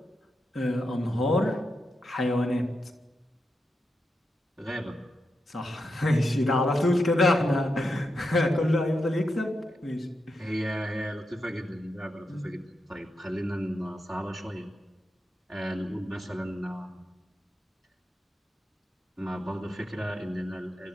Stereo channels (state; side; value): normal; both; correlation 0.86